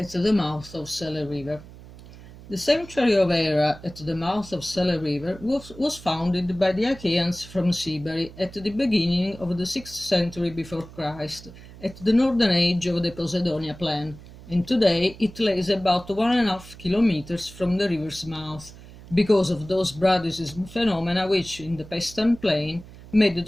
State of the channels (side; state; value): right; noise; hum, 18 dB below the sound